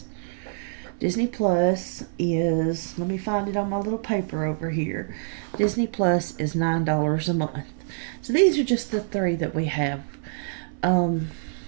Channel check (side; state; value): left; silent; 57 dB below the other